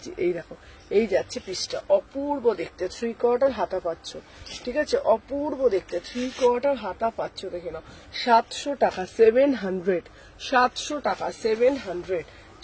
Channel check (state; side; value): identical; both; correlation 1.00